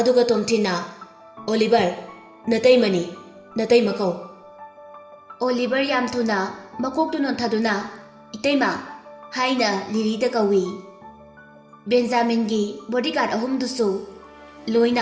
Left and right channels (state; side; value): identical; both; correlation 1.00